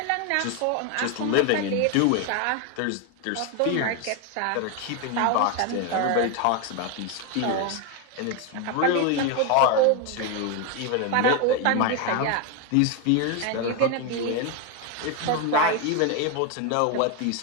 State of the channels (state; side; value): different; both; correlation 0.02